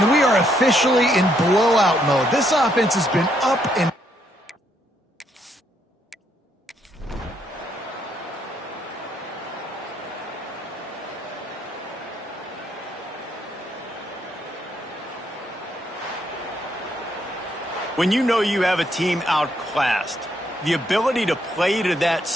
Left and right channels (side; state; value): both; normal; correlation 0.74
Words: we are officially in blowout mode. This offense has been up and when you know you have a team outclassed, the ability to play to that